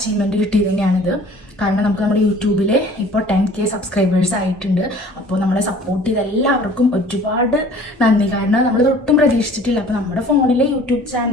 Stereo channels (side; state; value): both; normal; correlation 0.50